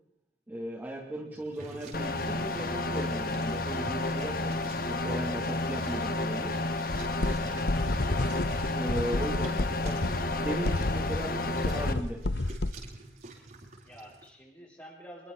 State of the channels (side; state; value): both; normal; correlation 0.53